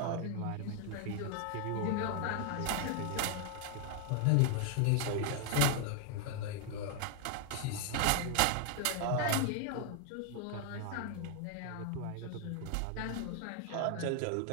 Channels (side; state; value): both; different; correlation 0.00